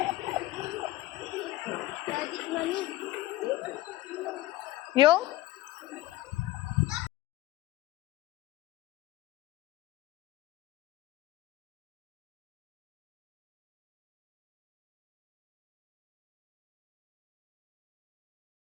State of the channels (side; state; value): right; quieter; 16.8 dB